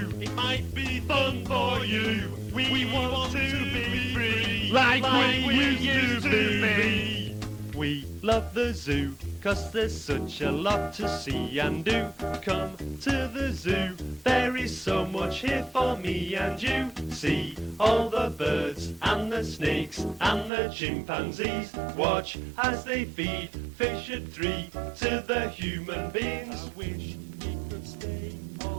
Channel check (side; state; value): left; drops out; at 20.5 s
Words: It might be fun for you. We want to be free, like we used to be. We love the zoo, 'cause there's such a lot to see and do. Come to the zoo, there is so much here for me and you. See all the birds and the snakes and the chimpanzees. Watch as they feed fish at 3 to the human beings. I wish we could stay